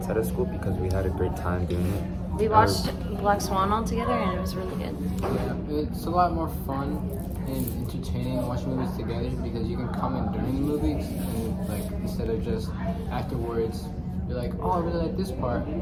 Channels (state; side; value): identical; both; correlation 1.00